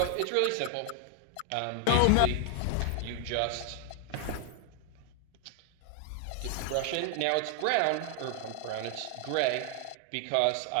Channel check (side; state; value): both; different; correlation 0.00